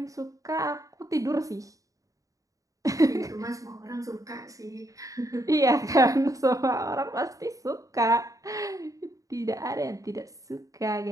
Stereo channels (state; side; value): late; left; 0.16 ms